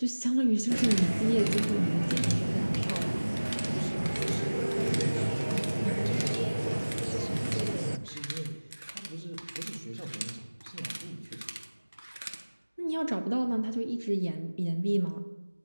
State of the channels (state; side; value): inverted; both; correlation -1.00